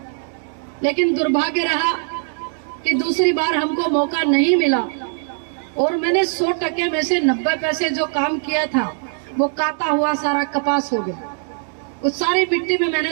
लेकिन दुर्भाग्य रहा कि दूसरी बार हमको मौका नहीं मिला, और मैंने 100% में से 90 पैसे जो काम किया था वो काटा हुआ सारा कपास हो गया। उस सारी मिट्टी में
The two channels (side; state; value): left; silent; 63 dB below the other